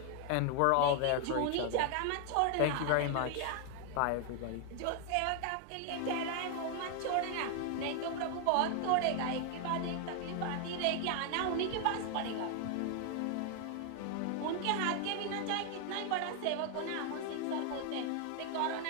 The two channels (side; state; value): both; different; correlation 0.00